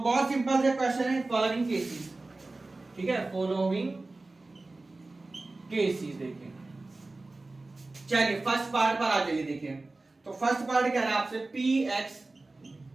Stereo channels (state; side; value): quieter; left; 3.2 dB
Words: सिंपल से क्वेश्चन है, फॉलोइंग केसेस, ठीक है, फॉलोइंग केसेस। देखिए चलिए फर्स्ट पार्ट पर आ जाइए। देखिए तो फर्स्ट पार्ट कह रहा है आपसे P X